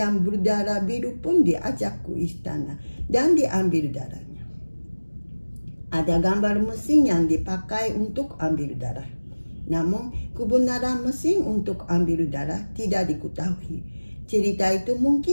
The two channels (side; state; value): both; inverted; correlation -1.00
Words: berdarah biru pun diajak ke istana dan diambil darahnya. Ada gambar mesin yang dipakai untuk ambil darah. Namun, kebenaran mesin untuk ambil darah tidak diketahui. Cerita itu